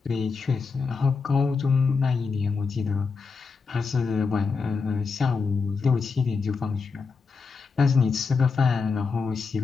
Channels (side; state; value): right; quieter; 4.9 dB